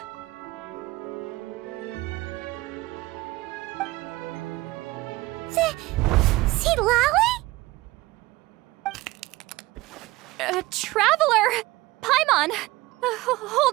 See Lolly? Traveler! Paimon!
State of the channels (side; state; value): left; quieter; 19.5 dB